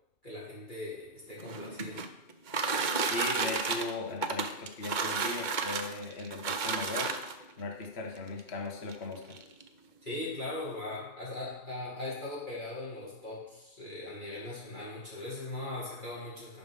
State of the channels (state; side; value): late; right; 2.2 ms